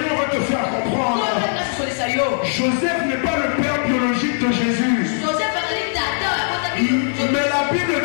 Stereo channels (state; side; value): silent; right; digital silence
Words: va te faire comprendre. Joseph n'est pas le père biologique de Jésus. Mais la Bible